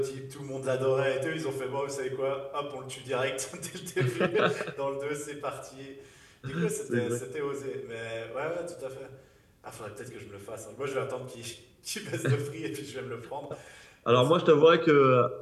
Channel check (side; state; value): both; identical; correlation 1.00